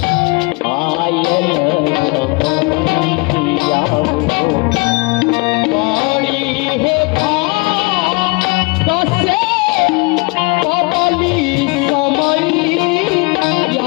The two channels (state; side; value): quieter; right; 27.9 dB